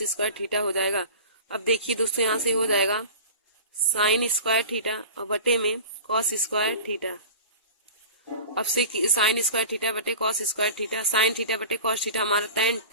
स्क्वायर थीटा हो जाएगा। अब देखिए दोस्तों, यहाँ से हो जाएगा साइन स्क्वायर थीटा और बटे में कॉस स्क्वायर थीटा। अब से साइन स्क्वायर थीटा बटे cos square theta, sine theta बटे कॉस थीटा हमारा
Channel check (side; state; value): both; inverted; correlation -0.37